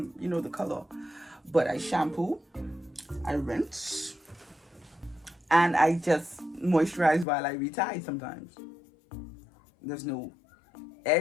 you know, the color. But I shampoo, I rinse, and I just moisturize while I retie sometimes. There's no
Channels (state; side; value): drops out; right; at 7.2 s